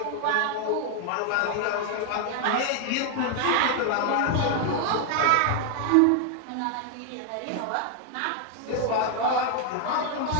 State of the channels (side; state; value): both; different; correlation 0.00